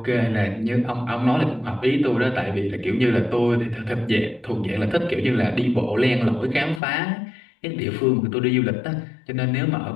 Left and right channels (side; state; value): right; drops out; at 6.8 s